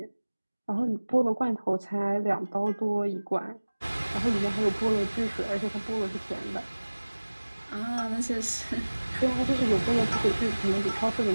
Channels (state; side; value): inverted; both; correlation -1.00